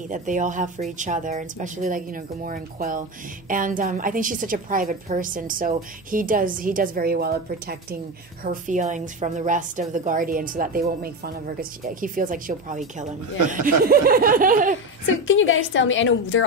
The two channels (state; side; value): normal; both; correlation 0.19